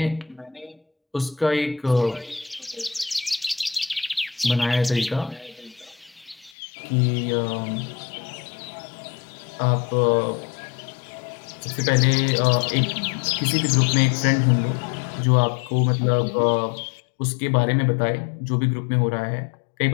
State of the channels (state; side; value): drops out; right; at 6.5 s